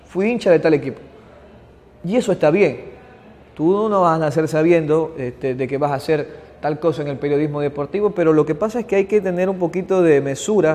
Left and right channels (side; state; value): both; identical; correlation 1.00